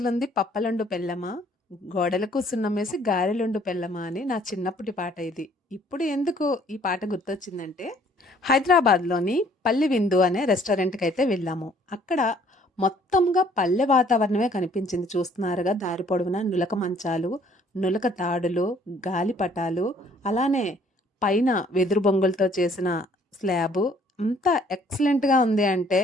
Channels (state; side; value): normal; both; correlation 0.60